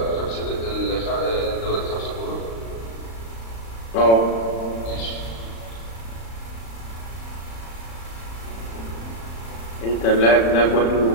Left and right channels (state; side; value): late; right; 35 ms